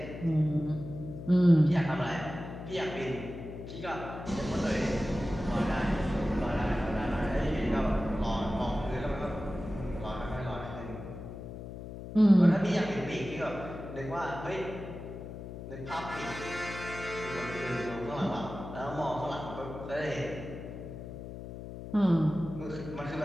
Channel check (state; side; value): noise; left; hum, 10 dB below the sound